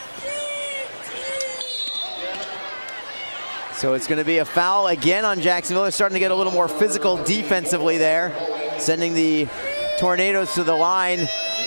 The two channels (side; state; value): both; inverted; correlation -1.00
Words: So it's going to be a foul again on Jacksonville. They're starting to get a little more physical defensively there, sending the Tornadoes to the line